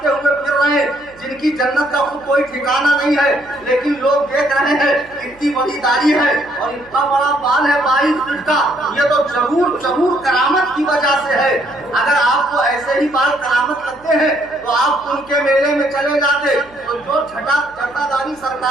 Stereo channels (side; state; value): right; noise; hum, 27 dB below the sound